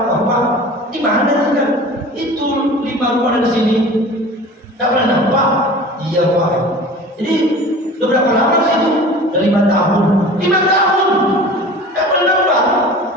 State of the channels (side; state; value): both; normal; correlation 0.40